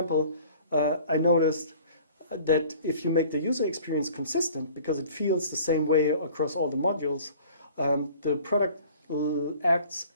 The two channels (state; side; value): inverted; both; correlation -0.49